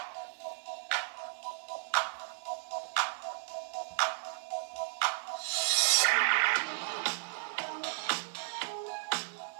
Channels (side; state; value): left; silent; 55 dB below the other